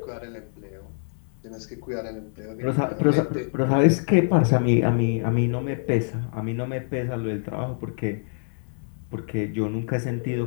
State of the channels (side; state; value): right; silent; digital silence